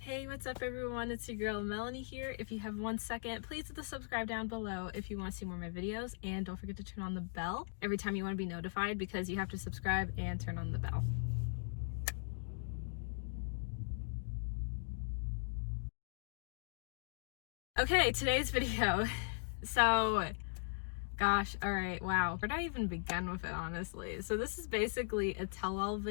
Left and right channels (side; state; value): right; silent; digital silence